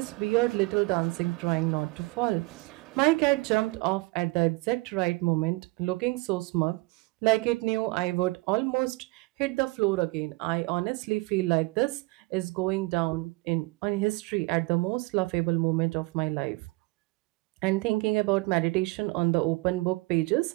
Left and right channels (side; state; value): left; quieter; 24.6 dB